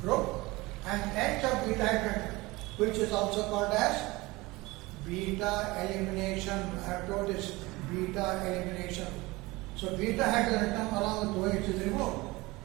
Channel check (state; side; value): quieter; left; 21.8 dB